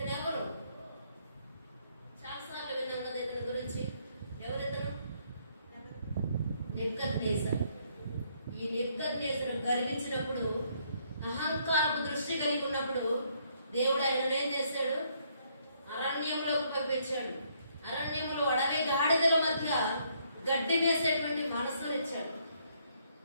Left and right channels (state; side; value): inverted; both; correlation -0.70